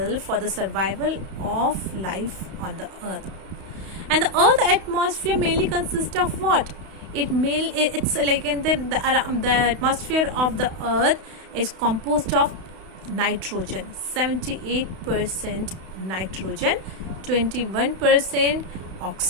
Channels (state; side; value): late; left; 32 ms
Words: for the survival of life on the Earth. And the Earth atmosphere mainly consists of what? It's like in the atmosphere of the Earth is composed of nitrogen, 78% nitrogen, 21%